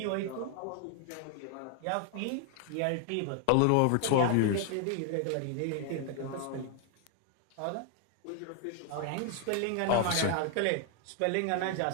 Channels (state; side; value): different; both; correlation 0.00